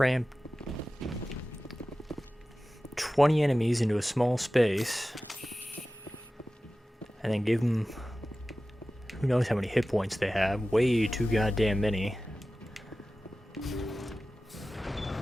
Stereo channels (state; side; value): normal; both; correlation 0.95